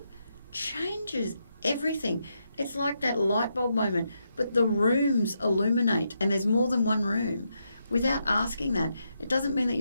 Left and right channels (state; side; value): inverted; both; correlation -0.82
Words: changes everything. It's like that light bulb moment, but the rooms illuminate, and there's more than one room. Without asking that, it doesn't mean that